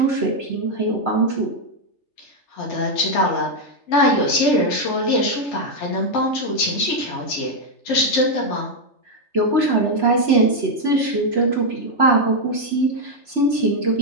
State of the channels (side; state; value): right; late; 3.3 ms